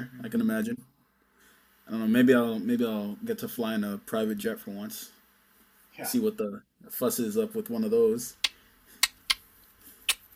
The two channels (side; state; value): both; identical; correlation 1.00